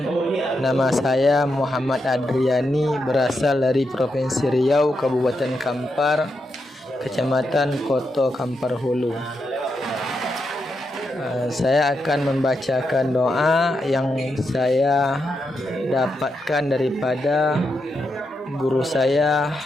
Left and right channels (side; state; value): both; normal; correlation 0.84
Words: Nama saya Muhammad Adriani, berasal dari Provinsi Riau, Kabupaten Kampar, Kecamatan Koto Kampar Hulu. Saya akan membacakan doa yang saya dapatkan daripada guru saya